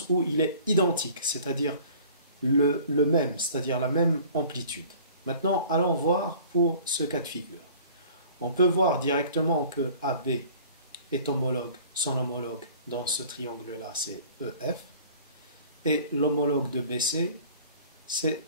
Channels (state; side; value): inverted; both; correlation -0.48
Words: où il est identique, c'est-à-dire le même, c'est-à-dire la même amplitude. Maintenant, allons voir pour ce cas de figure. On peut voir directement que AB est homologue, son homologue dans ce triangle-là, c'est EF, et l'homologue de BC c'est